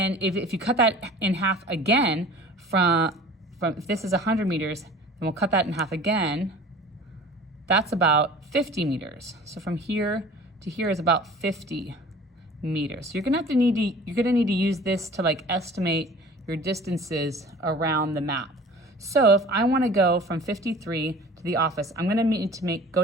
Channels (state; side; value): normal; both; correlation 0.44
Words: if you cut that in half again, from if this is 100 meters, then we'll cut that in half again. That's about 50 meters. So from here to here is about 50 meters. So you're gonna need to use this to like estimate your distances around the map. So if I wanna go from 53 to the office, I'm gonna need to